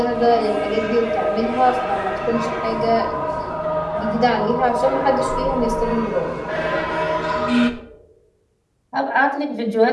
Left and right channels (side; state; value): both; identical; correlation 1.00